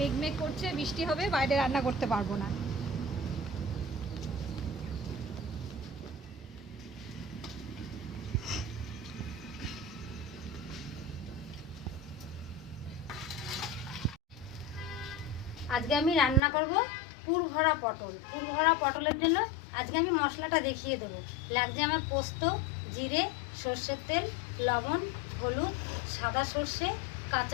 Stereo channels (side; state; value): right; drops out; at 16.4 s